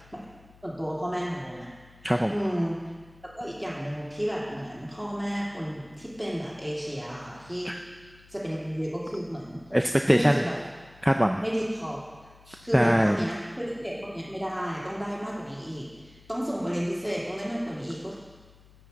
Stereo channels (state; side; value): noise; left; hum, 25 dB below the sound